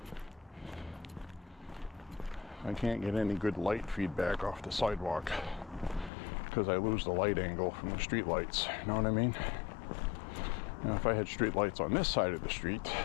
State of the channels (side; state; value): right; drops out; at 6.1 s